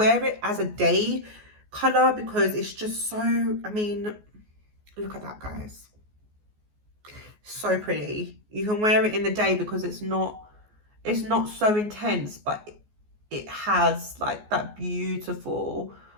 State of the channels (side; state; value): left; late; 14 ms